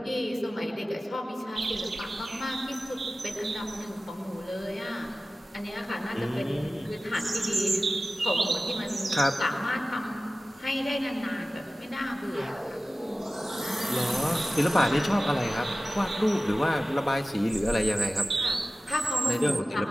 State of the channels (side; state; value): both; normal; correlation 0.96